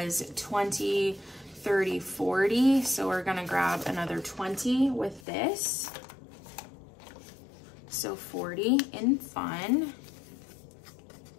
20, 30, 40. So we're gonna grab another 20 with this. So 40 in fun.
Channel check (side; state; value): right; drops out; at 5.2 s